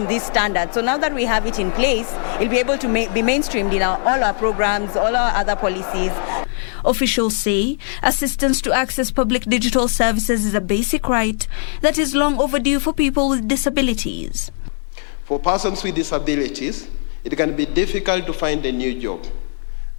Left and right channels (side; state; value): right; silent; 64 dB below the other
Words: this standard. So now that we have it in place, it'll be able to be mainstreamed in all our programs, all our other policies. Officials say assistance to access public digital services is a basic right that is long overdue for people with disabilities. For persons with disabilities, it can be difficult to find a new job.